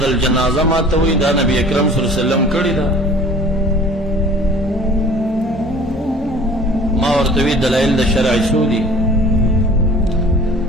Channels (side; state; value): both; normal; correlation 0.47